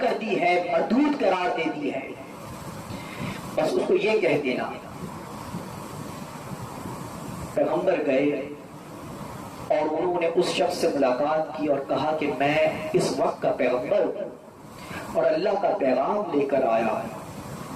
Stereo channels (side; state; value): both; identical; correlation 1.00